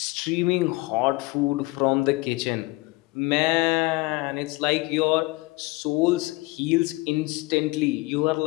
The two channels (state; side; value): quieter; right; 23.1 dB